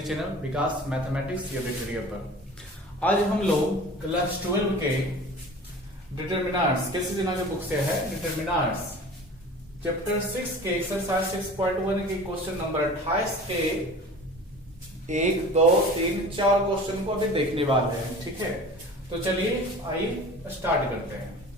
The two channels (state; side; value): normal; both; correlation 0.40